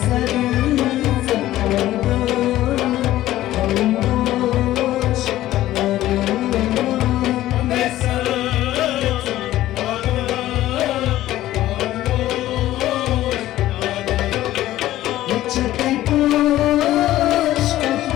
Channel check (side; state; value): right; quieter; 14.6 dB